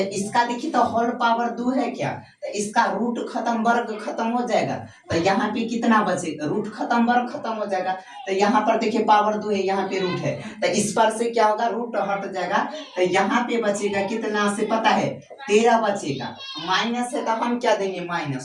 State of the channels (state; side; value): identical; both; correlation 1.00